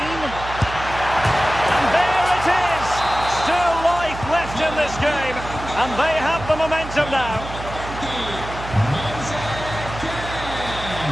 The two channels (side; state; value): right; noise; hum, 10 dB below the sound